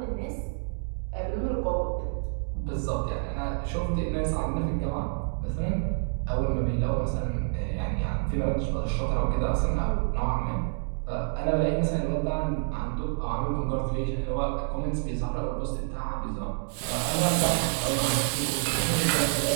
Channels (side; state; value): left; silent; digital silence